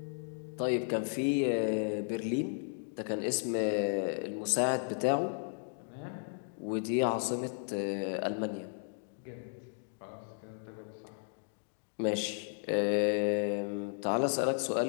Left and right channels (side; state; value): right; silent; digital silence